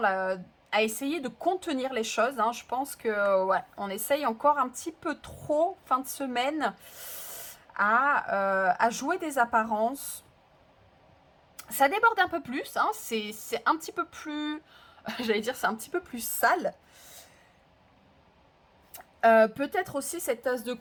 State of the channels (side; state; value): both; identical; correlation 1.00